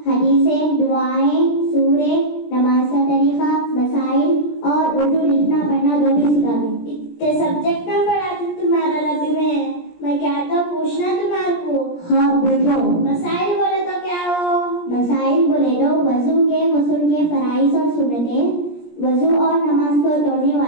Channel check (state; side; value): late; right; 17 ms